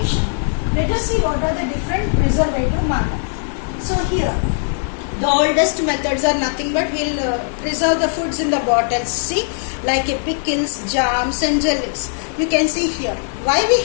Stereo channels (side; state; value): right; silent; digital silence